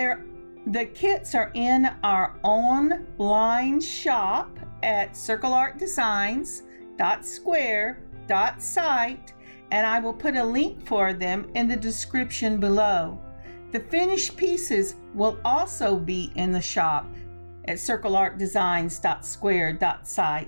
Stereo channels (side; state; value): both; inverted; correlation -1.00